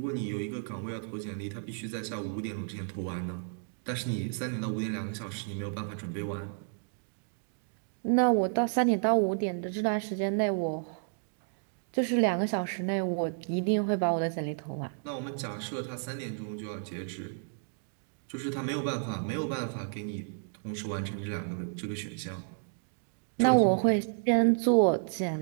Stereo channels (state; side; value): silent; left; digital silence